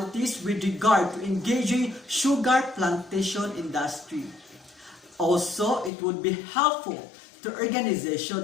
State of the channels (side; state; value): right; drops out; at 5.9 s